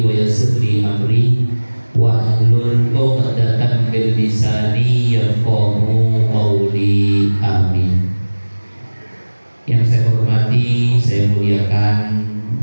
wa yassir li amri wahlul 'uqdatam min lisani yafqahu qawli. Amin. Yang saya hormati, saya muliakan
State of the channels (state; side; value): inverted; both; correlation -1.00